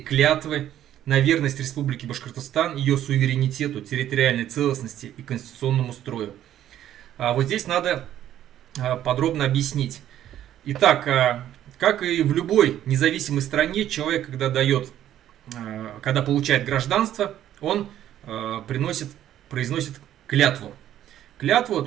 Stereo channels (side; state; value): left; quieter; 11.7 dB